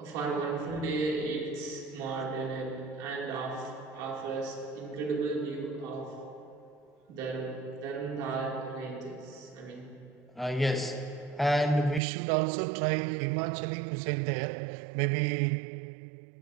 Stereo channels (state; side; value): drops out; left; at 12.0 s